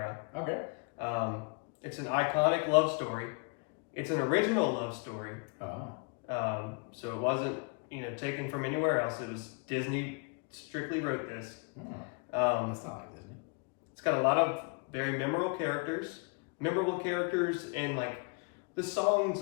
Okay. It's an iconic love story. It's an original love story. Oh. So it wasn't, taken from anywhere else. It was Disney strictly wrote this. That's not like Disney. It's got a lot of very memorable characters, and like the songs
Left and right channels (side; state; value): right; quieter; 35.4 dB